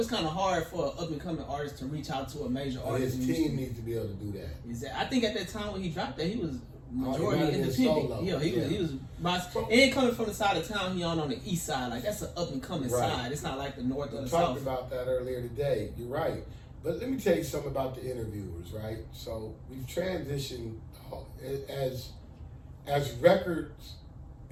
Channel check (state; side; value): identical; both; correlation 1.00